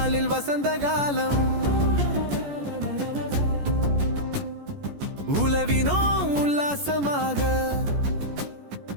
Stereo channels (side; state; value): left; late; 14 ms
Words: வசந்த காலம். உலவினோம் உல்லாசமாக,